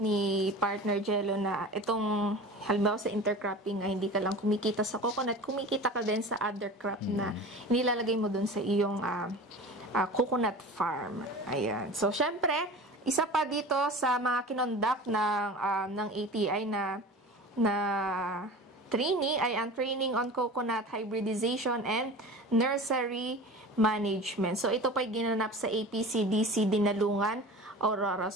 ni Partner Jello na itong halimbawa sa intercropping ay hindi ka lang kumikita sa coconut, kumikita ka din sa other crop na nilalagay mo dun sa iyong coconut farm. Ayan. So, syempre, isa pa dito sa mga kinonduct ng ATI na training ay ang training on coconut hybridization and nursery management. So, ito pa ginanap sa APCDC Dinalungan, Aurora.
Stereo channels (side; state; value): both; normal; correlation 0.36